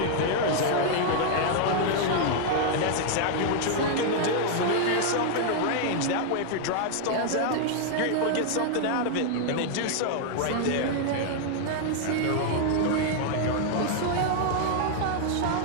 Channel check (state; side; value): different; both; correlation 0.00